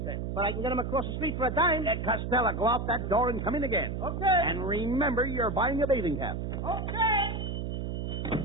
cents. But I can get him across the street for a dime. Costello, go out that door and come in again. Okay. And remember, you're buying a bathing cap. Okay.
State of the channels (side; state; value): right; noise; hum, 3 dB below the sound